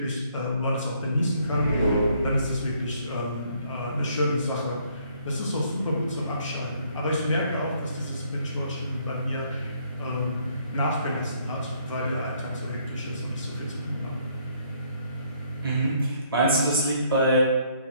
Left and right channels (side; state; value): both; inverted; correlation -0.66